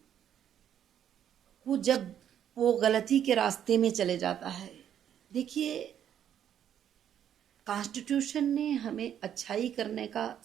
को जब वो गलती के रास्ते में चले जाता है, देखिए कॉन्स्टिट्यूशन ने हमें अच्छाई करने का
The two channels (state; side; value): quieter; left; 9.7 dB